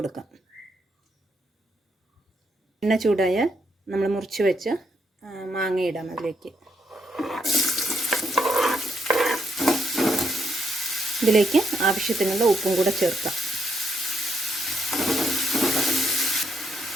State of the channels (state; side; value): normal; both; correlation 0.77